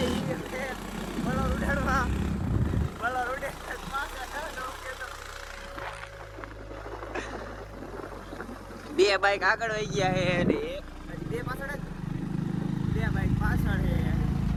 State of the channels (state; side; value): identical; both; correlation 1.00